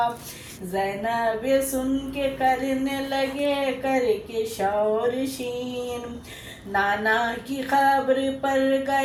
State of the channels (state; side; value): identical; both; correlation 1.00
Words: زینب سن کے کرنے لگے کر کے شور شین، نانا کی قبر پر